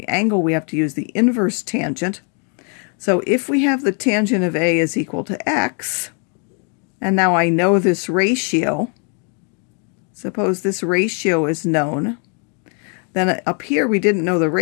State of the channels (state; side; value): quieter; right; 40.0 dB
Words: angle, we have to use the inverse tangent. So if we have the tangent of A is equal to x, and now I know this ratio, suppose this ratio is known, then up here we didn't know the